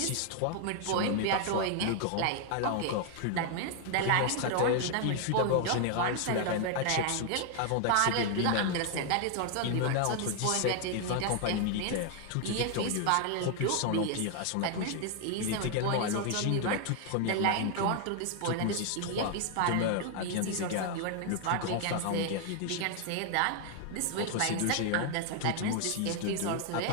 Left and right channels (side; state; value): both; different; correlation 0.00